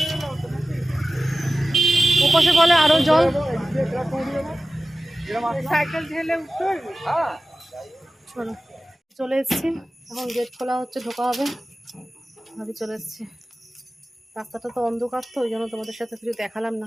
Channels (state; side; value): normal; both; correlation 0.94